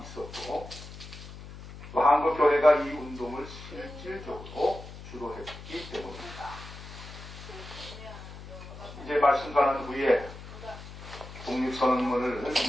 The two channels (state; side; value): noise; left; hum, 14 dB below the sound